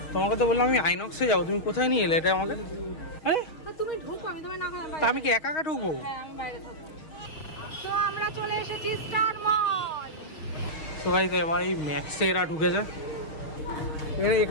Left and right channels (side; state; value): right; late; 6.4 ms